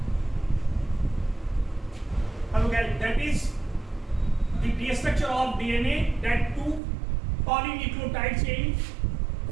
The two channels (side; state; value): left; drops out; at 6.8 s